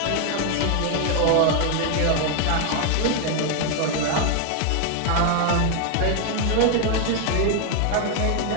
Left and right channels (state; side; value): different; both; correlation 0.00